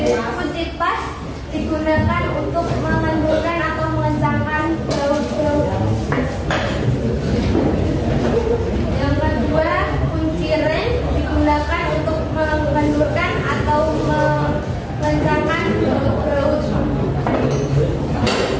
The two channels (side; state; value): both; identical; correlation 1.00